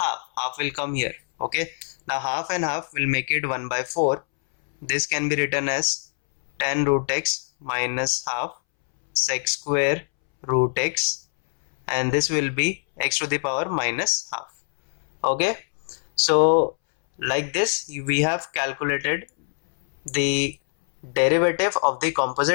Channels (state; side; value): silent; right; 63 dB below the other